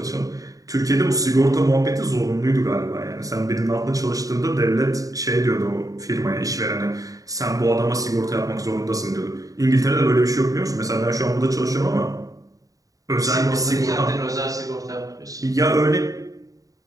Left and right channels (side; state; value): left; late; 0.17 ms